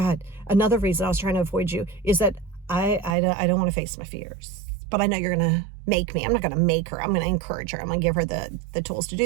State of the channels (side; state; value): left; drops out; at 3.2 s